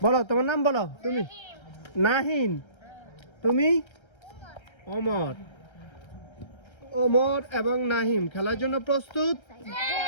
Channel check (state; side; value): late; right; 1.3 ms